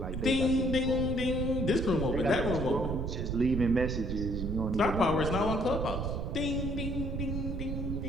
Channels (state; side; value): noise; right; rumble, 3 dB below the sound